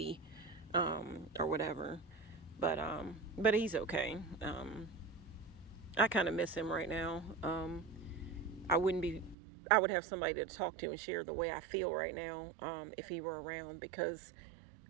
or whatever, but he's okay. I kind of miss him right now. I would have somebody to talk to and share the way I feel right now, if he were around, because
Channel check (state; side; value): drops out; left; at 9.3 s